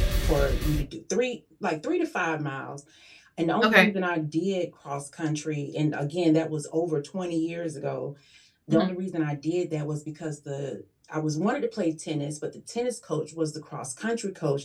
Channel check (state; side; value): identical; both; correlation 1.00